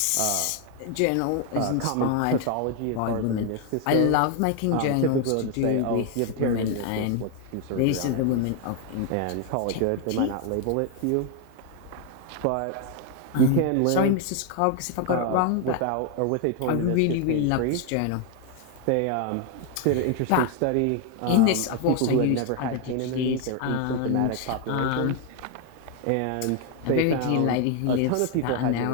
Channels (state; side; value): different; both; correlation 0.01